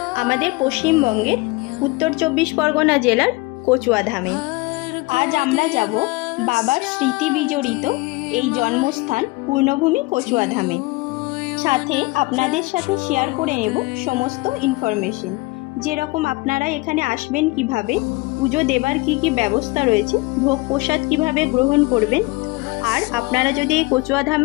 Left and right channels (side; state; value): right; quieter; 24.0 dB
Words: আমাদের পশ্চিমবঙ্গের উত্তর 24 পরগনা জেলার কচুয়াধামে। আজ আমরা যাব বাবার স্মৃতি বিজড়িত এই জন্মস্থান পূর্ণভূমি কচুয়াধামে। সাথে আপনাদের সাথে শেয়ার করে নেব সমস্ত ইনফরমেশন, যেরকম আপনারা এখানে আসবেন কিভাবে, পুজো দেবার কি কি ব্যবস্থা রয়েছে, ভোগ প্রসাদ কিভাবে গ্রহণ করবেন। আর আপনারা যদি এই